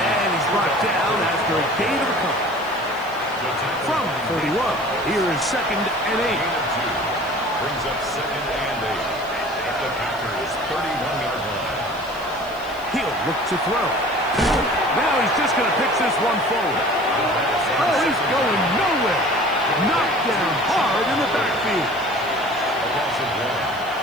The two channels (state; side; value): noise; left; hiss, 23 dB below the sound